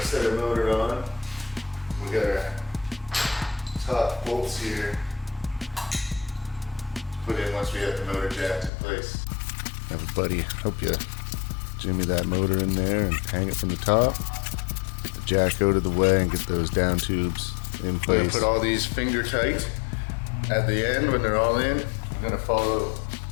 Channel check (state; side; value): drops out; right; at 8.7 s